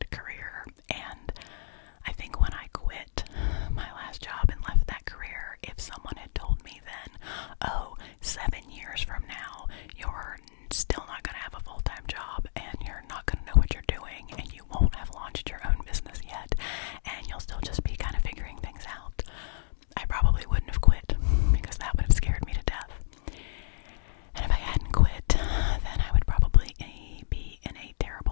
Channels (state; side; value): silent; right; digital silence